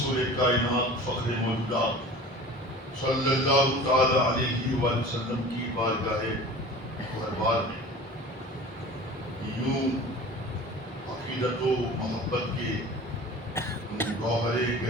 کائنات فخر موجودات صلی اللہ تعالی علیہ وآلہ وسلم کی بارگاہ دربار میں یوں عقیدت و محبت کے گوہر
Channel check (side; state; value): both; normal; correlation 0.40